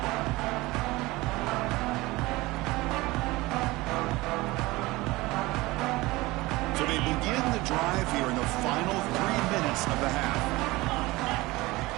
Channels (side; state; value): left; quieter; 20.7 dB